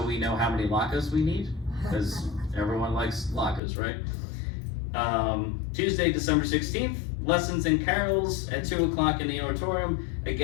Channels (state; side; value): drops out; right; at 3.6 s